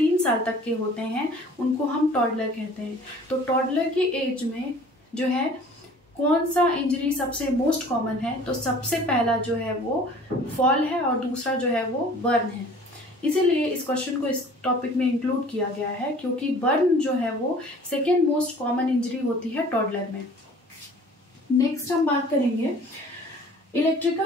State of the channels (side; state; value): both; normal; correlation 0.49